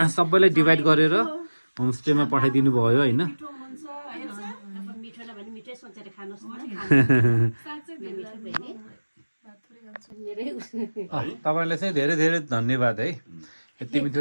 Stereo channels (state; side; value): inverted; both; correlation -1.00